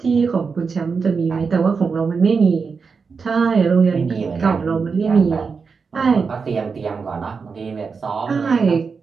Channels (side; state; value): left; quieter; 5.2 dB